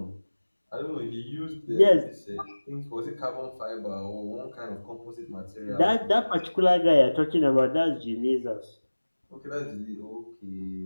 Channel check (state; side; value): inverted; both; correlation -1.00